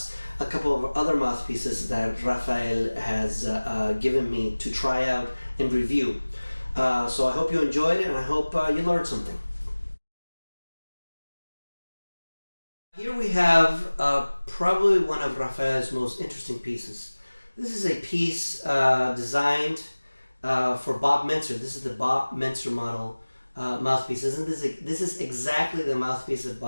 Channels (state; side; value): inverted; both; correlation -1.00